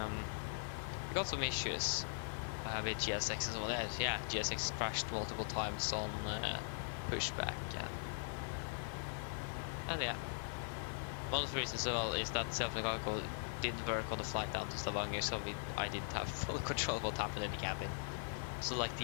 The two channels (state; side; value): silent; right; digital silence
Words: We got some issues with GSX and so on. Yeah, GSX crashed multiple times on pushback. And yeah, one of the reasons as well is that self-mechanical didn't work on the flight down to Stavanger, so I didn't have full control of what happened in the cabin. So like